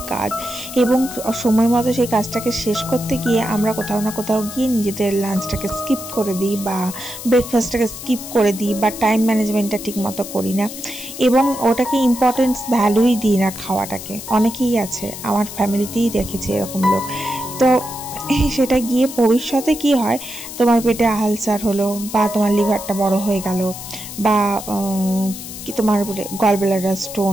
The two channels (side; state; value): left; noise; hiss, 11 dB below the sound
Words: কাজ, এবং সময় মতো সেই কাজটাকে শেষ করতে গিয়ে আমরা কোথাও না কোথাও গিয়ে নিজেদের লাঞ্চটাকে স্কিপ করে দিই, বা ব্রেকফাস্টটাকে স্কিপ করে দিই, বা টাইম ম্যানেজমেন্টটা ঠিক মতো করি না, এবং ওটাকে ইম্পর্টেন্স ভ্যালুই দিই না খাওয়াটাকে। অনেকেই আছে, আমার ফ্যামিলিতেই দেখেছি এরকম লোক। তো সেটা গিয়ে ভবিষ্যতে কি হয়, তোমার পেটে আলসার হলো, বা তোমার লিভারটা বড় হয়ে গেল, বা কি তোমার গল ব্লাডার